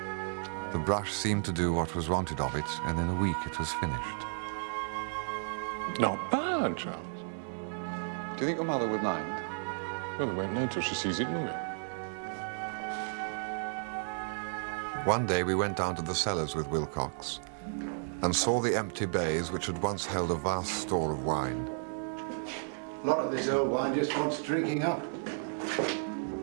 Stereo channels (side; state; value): left; silent; digital silence